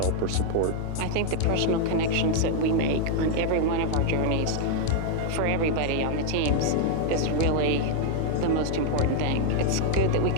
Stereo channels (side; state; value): both; different; correlation 0.00